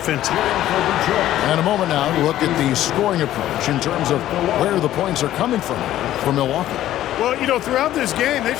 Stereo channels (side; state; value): right; quieter; 13.2 dB